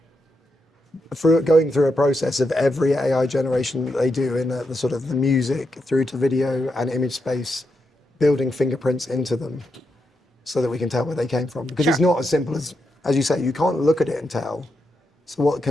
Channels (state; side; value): normal; both; correlation 0.84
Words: going through a process of every AI generation that they do in the sort of the music through to video and image space, building fingerprints into them so that we can tell where they came from. Because it's Sure. not as simple as you say, you can't look at it and tell. So what